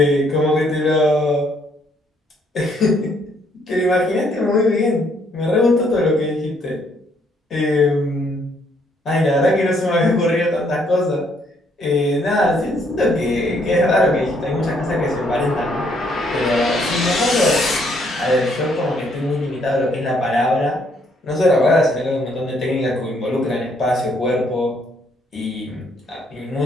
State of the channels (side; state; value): both; normal; correlation 0.69